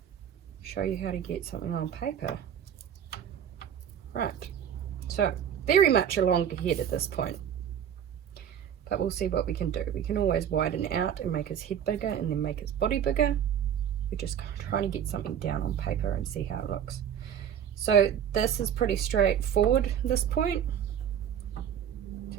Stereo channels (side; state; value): left; quieter; 9.0 dB